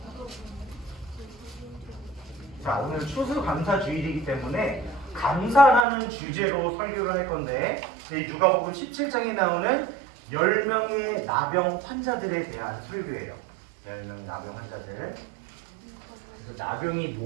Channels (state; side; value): drops out; left; at 5.9 s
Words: 자, 오늘 추수감사주일이기 때문에 감사라는 주제로 설교를 할 건데 이 누가복음 17장에 나오는 10명의 나병 환자들에 대한 설교예요. 10명 나병 환자들. 그래서 나병이